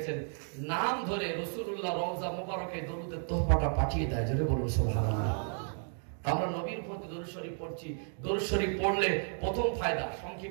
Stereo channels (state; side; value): silent; left; 56 dB below the other